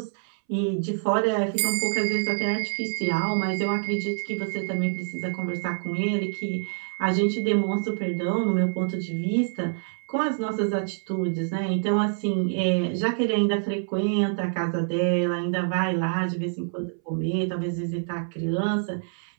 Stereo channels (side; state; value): left; silent; 61 dB below the other